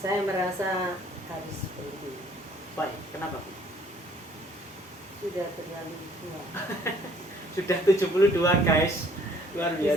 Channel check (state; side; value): normal; both; correlation 0.59